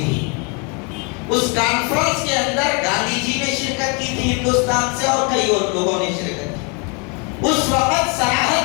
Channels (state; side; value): quieter; right; 33.4 dB